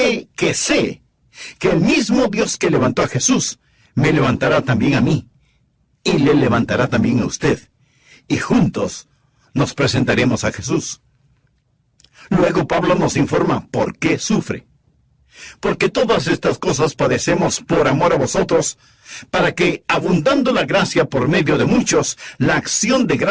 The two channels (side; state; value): both; identical; correlation 1.00